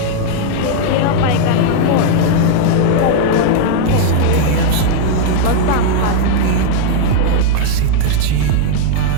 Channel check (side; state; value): both; different; correlation 0.00